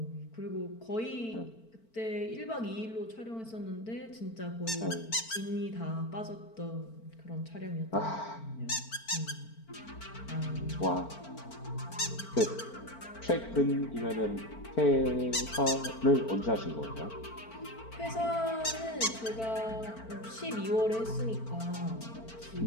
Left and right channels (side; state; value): right; late; 4.5 ms